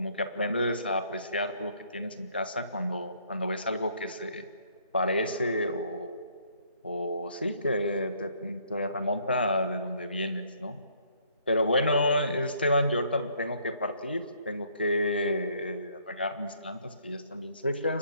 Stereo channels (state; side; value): inverted; both; correlation -0.65